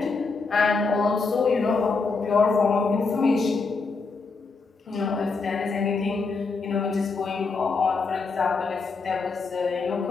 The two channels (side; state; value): right; quieter; 4.4 dB